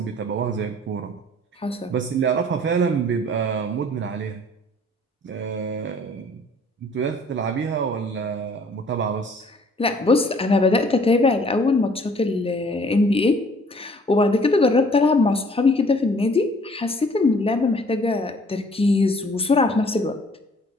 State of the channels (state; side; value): normal; both; correlation 0.56